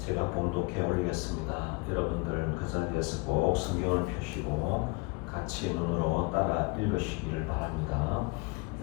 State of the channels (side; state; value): right; quieter; 26.8 dB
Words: 봉독해 올리겠습니다. 여러분들 그 자리에서 꼭 성경을 펴시고 같이 눈으로 따라 읽으시기를 바랍니다.